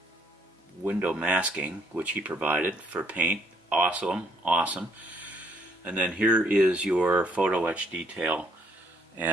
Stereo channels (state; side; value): normal; both; correlation 0.67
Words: window masking, which he provided for paint. Awesome, awesome. And then here is your photo etch detail,